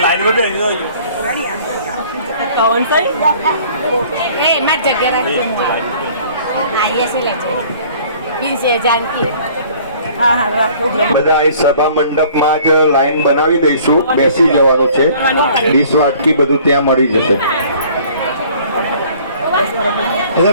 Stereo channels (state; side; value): inverted; both; correlation -0.53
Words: कौन सा ए मैं जगह आइए से ले से जानकी हाँ हाँ રાખો બધા અહીં સભા મંડપમાં જ લાઈન બનાવી દઈશું. બેસી જવાનું છે. ડીશ વાટકી બધું ત્યાં મળી જશે.